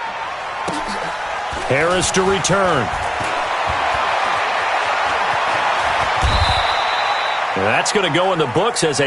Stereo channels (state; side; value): identical; both; correlation 1.00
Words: Harris to return. That's going to go in the books as